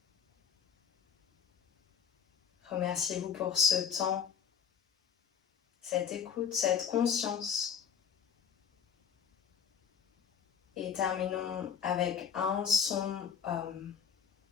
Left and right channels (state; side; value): quieter; right; 7.5 dB